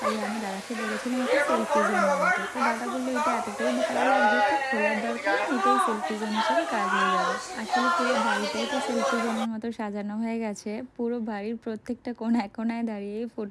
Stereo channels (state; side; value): identical; both; correlation 1.00